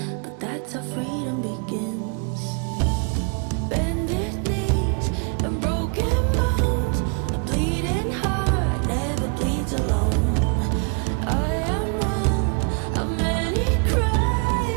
but that's how freedom begins. Bended knees and broken bones, a bleeding heart never bleeds alone. I am one of many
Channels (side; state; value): left; quieter; 36.6 dB